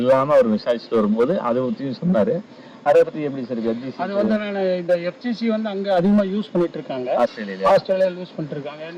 அவர் விசாரிச்சுட்டு வரும்போது அதை பற்றியும் சொன்னார். அதை பற்றி எப்படி சார் எஃப்ஜிசி? அது வந்து நான் இந்த எஃப்ஜிசி வந்து அங்கே அதிகமாக யூஸ் பண்ணிட்டு இருக்காங்க, ஆஸ்திரேலியாவில் யூஸ் பண்ணிட்டு இருக்காங்க.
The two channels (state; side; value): identical; both; correlation 1.00